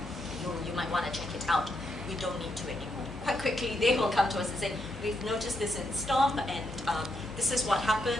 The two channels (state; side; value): noise; left; hum, 15 dB below the sound